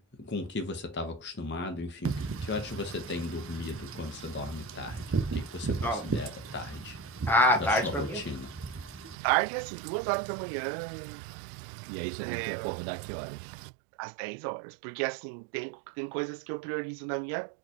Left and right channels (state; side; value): drops out; left; at 9.2 s